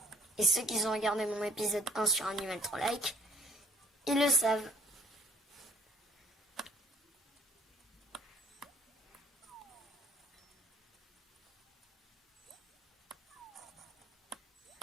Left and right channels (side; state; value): both; normal; correlation 0.60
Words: Et ceux qui ont regardé mon épisode 1 sur Animal Troll Like, ils le savent.